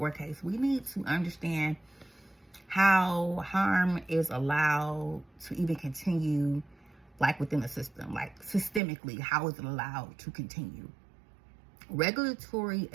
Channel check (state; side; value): drops out; left; at 8.8 s